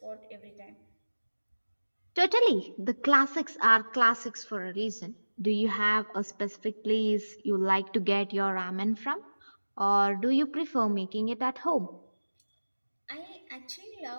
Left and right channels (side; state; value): both; inverted; correlation -1.00